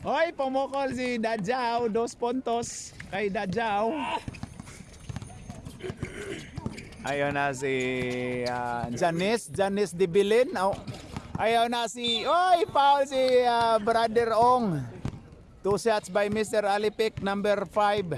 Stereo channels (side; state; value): both; identical; correlation 1.00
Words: Hoy, pumukol si Dadjaw. 2 puntos kay Dadjaw. Ayun na si Janice Dibilin. Ayun na si... Oy, foul si Brother Ong. 2 shots by Mr. Alipik, number 5.